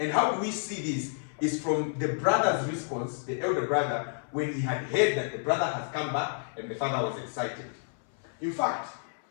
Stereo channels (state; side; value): silent; right; 58 dB below the other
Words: how do we see this? Is from the brother's response, the elder brother, when he had heard that the brother has come back and the father was excited. In fact,